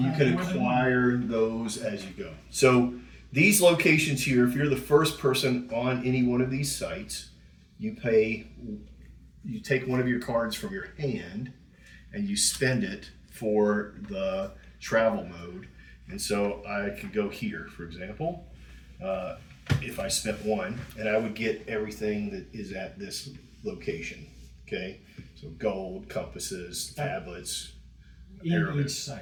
you can acquire those as you go. So these locations here, if you're the first person on any one of these sites, you take one of your cards from your hand and you spend it for the travel mode. And so I could go here, for example, if I spent 1, and I would get everything that is at this location. Okay, so gold, compasses, tablets, In arrowheads. each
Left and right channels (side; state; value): both; identical; correlation 1.00